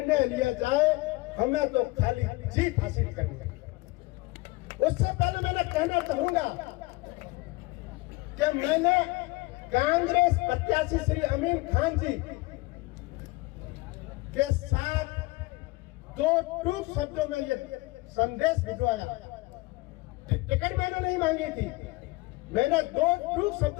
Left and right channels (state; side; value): quieter; right; 22.3 dB